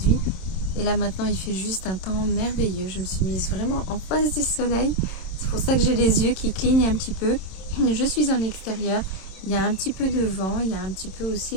Et là maintenant il fait juste un temps merveilleux. Je me suis mise vraiment en face du soleil. C'est pour ça que j'ai les yeux qui clignent un petit peu. Je suis en extérieur. Il y a un petit peu de vent. Il y a un petit peu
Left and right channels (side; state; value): right; late; 27 ms